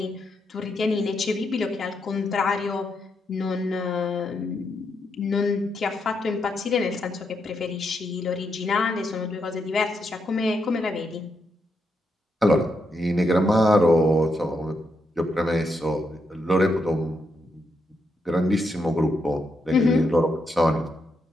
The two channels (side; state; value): both; normal; correlation 0.81